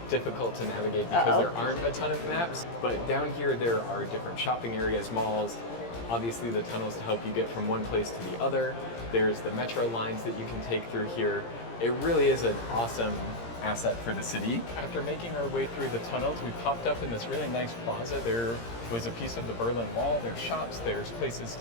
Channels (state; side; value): late; right; 17 ms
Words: difficult to navigate because there aren't a ton of maps, but down here there are different shopping areas, malls, obviously the tunnels to help you get from one place to the other. There's the metro lines that you can take through here. It really is an awesome asset for the city. After making our way through the tunnels, we popped up in this really nice plaza. There was a piece of the Berlin Wall, there's shops, there's places